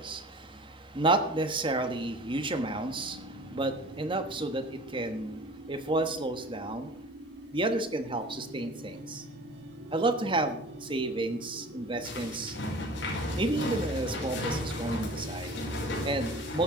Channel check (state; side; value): normal; both; correlation 0.42